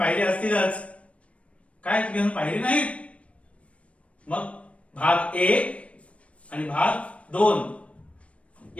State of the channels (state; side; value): late; right; 0.063 ms